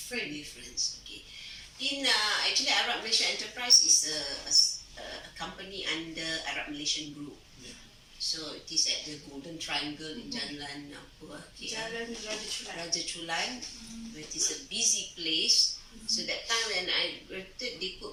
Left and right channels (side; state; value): both; identical; correlation 1.00